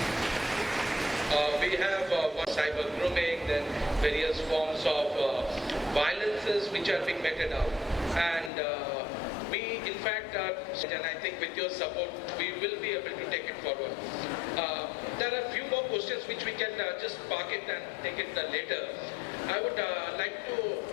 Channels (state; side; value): drops out; right; at 8.5 s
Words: We have cyber grooming, then various forms of violences which are being meted out. And we, in fact, and I think with your support, we will be able to take it forward. There are a few more questions which we can just park it and take it later. I would like to